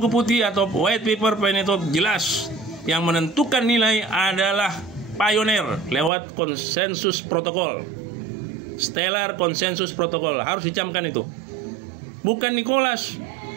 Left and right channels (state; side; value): drops out; left; at 6.1 s